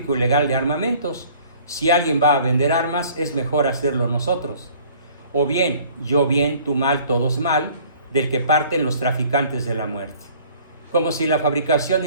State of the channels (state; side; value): inverted; both; correlation -0.53